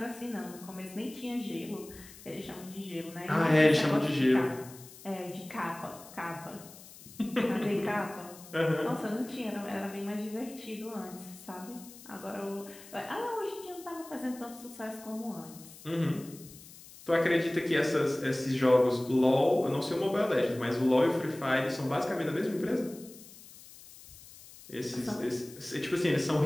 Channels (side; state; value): left; noise; hiss, 19 dB below the sound